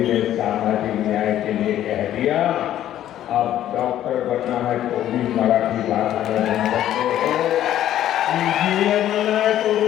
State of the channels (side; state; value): right; quieter; 12.0 dB